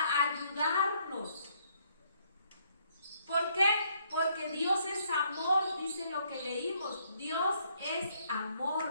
ayudarnos. ¿Por qué? Porque Dios es amor, dice lo que leímos. Dios es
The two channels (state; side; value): inverted; both; correlation -0.69